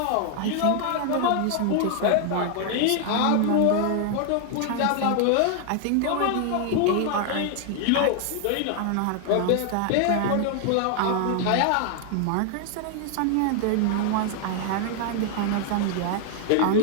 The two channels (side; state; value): both; different; correlation 0.00